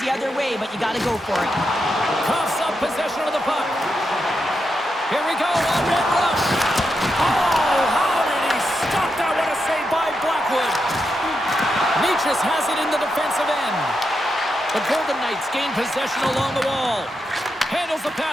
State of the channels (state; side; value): normal; both; correlation 0.85